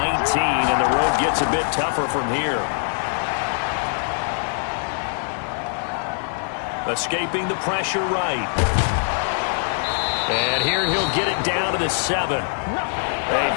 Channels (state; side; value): silent; right; 62 dB below the other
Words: and the road gets a bit tougher from here. Escaping the pressure right. And here he'll get it down to the 7. A